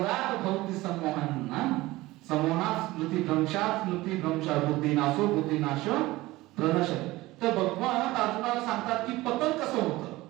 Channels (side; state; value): left; quieter; 18.9 dB